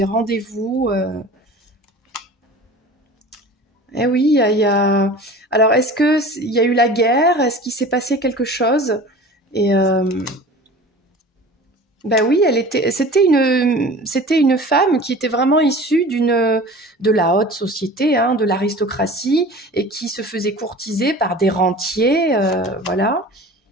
rendez-vous. Eh oui, Alors, est-ce qu'il y a eu la guerre? Est-ce qu'il s'est passé quelque chose? Et ben oui, c'était une femme qui était vraiment issue de la haute société, hein, de l'aristocratie, et qui se faisait courtiser par des rentiers, voilà.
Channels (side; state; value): both; normal; correlation 0.40